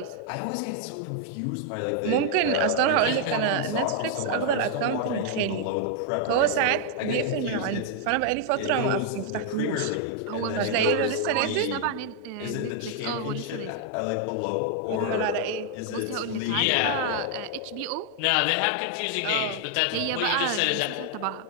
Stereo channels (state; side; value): different; both; correlation 0.00